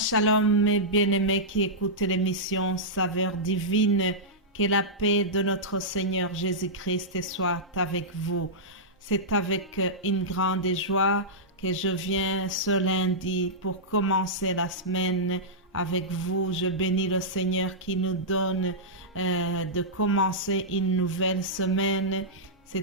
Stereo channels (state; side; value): normal; both; correlation -0.12